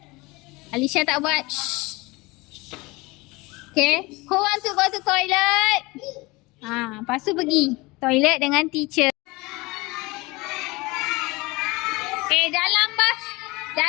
Alisha tak buat. Shh. Okay, who want to go to toilet? Lepas tu pergi toilet dengan teacher.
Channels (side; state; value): right; quieter; 23.4 dB